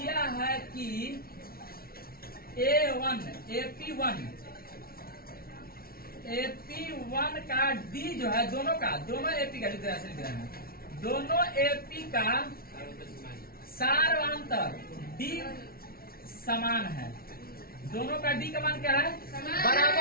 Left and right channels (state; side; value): late; right; 0.44 ms